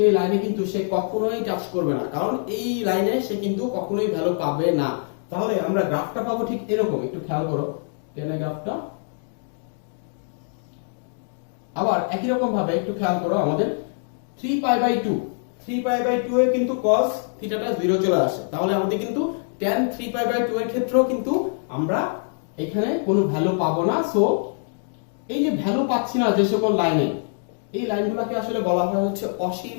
লাইনে কিন্তু সে কখনোই টাচ করবে না, কারণ এই লাইনে সে কিন্তু কখনোই ভ্যালু পাবে না। তাহলে আমরা গ্রাফটা পাবো ঠিক এরকম। একটু খেয়াল করো tan এর গ্রাফটা। আবার একই রকম ভাবে একটু খেয়াল করো আমাদের 3π/2 এ কিন্তু cos থিটাটা 0 চলে আসে। তাহলে আমাদের কিন্তু tan 3π/2 এর ক্ষেত্রেও কিন্তু আমরা এখানে কোনো ভ্যালু পাবো না। সো এই যে ভ্যালু পাচ্ছি না যে সকল লাইনে, এই লাইনগুলোকে আসলে বলা হয় হচ্ছে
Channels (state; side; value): silent; right; digital silence